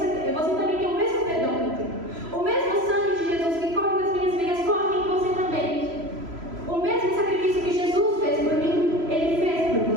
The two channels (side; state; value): left; late; 3.0 ms